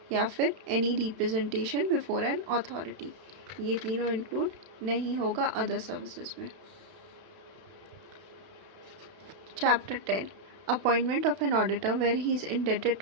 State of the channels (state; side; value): late; left; 32 ms